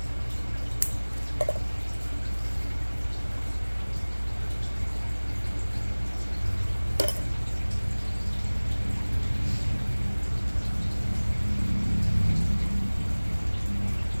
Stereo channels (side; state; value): both; inverted; correlation -1.00